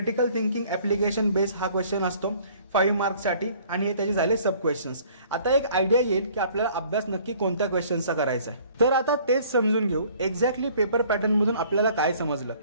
thinking application base हा क्वेश्चन असतो 5 मार्क्ससाठी आणि हे त्याचे झाले सब क्वेश्चन्स. आता एक आयडिया येईल की आपल्याला अभ्यास नक्की कोणत्या क्वेश्चनचा करायचा आहे. तर आता तेच समजून घेऊ एक्झॅक्टली पेपर पॅटर्न मधून आपल्याला काय समजलं.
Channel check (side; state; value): both; inverted; correlation -0.55